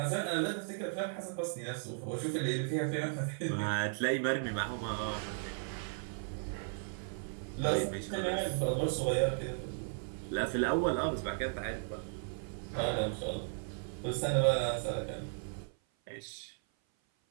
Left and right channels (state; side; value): silent; left; 54 dB below the other